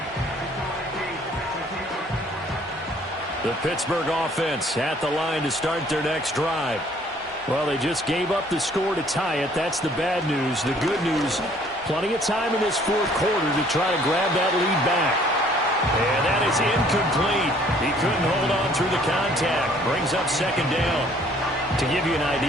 The Pittsburgh offense at the line to start their next drive. Well, they just gave up the score to tie it. That's the bad news. The good news, Plenty of time in this fourth quarter to try to grab that lead back. And that is incomplete. He couldn't hold on through the contact. Brings up second down. To give you an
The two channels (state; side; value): normal; both; correlation 0.59